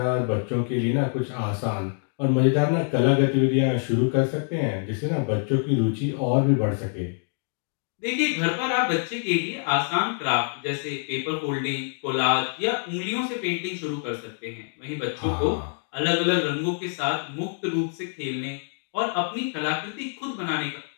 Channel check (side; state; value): right; silent; 61 dB below the other